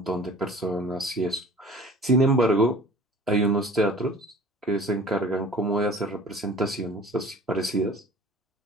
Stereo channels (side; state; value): both; normal; correlation 0.45